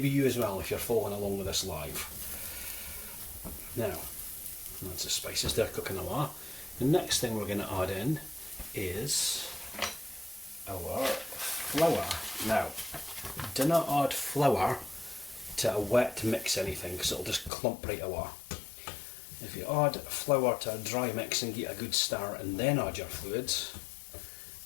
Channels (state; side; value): drops out; right; at 17.5 s